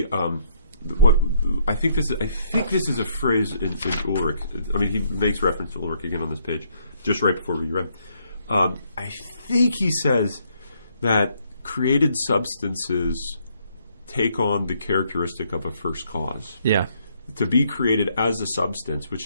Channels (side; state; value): both; inverted; correlation -0.70